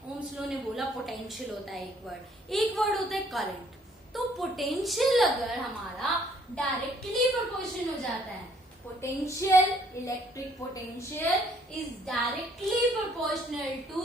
ओम्स लॉ ने बोला पोटेंशियल होता है एक वर्ड होता है करंट। तो पोटेंशियल अगर हमारा डायरेक्टली प्रोपोर्शन हो जाता है, potential, electric potential is directly proportional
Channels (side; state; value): both; normal; correlation 0.64